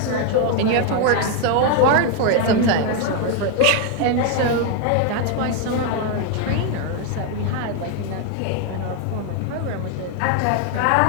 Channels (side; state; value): both; different; correlation 0.01